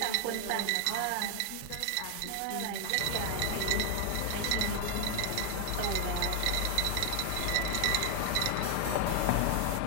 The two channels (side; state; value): both; different; correlation 0.00